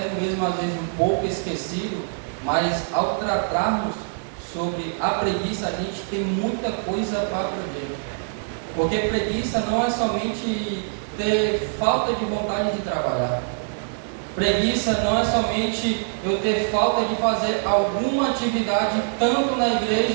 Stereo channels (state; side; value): silent; left; 61 dB below the other